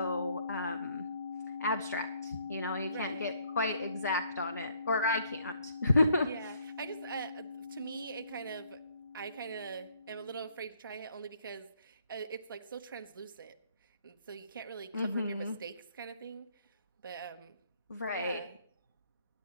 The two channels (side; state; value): both; inverted; correlation -0.66